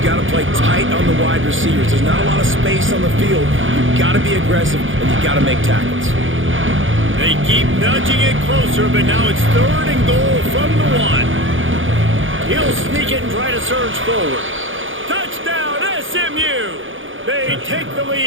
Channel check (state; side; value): late; left; 0.57 ms